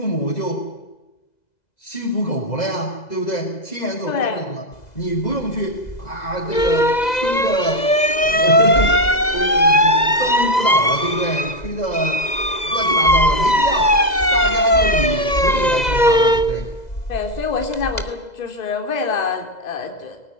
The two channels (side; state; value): right; late; 2.0 ms